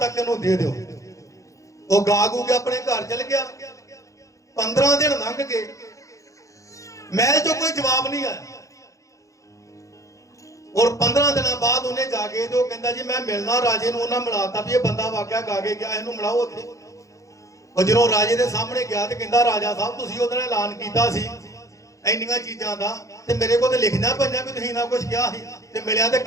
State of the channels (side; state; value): right; late; 0.15 ms